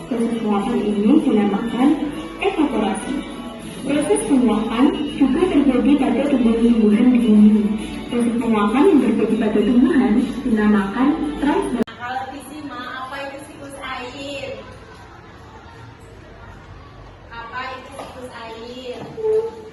Proses penguapan ini dinamakan evaporasi. Proses penguapan juga terjadi pada tumbuhan-tumbuhan di bumi. Proses penguapan yang terjadi pada tumbuhan dinamakan transpirasi. Kalau Bisma, apa itu siklus air? Apa itu siklus air?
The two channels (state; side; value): identical; both; correlation 1.00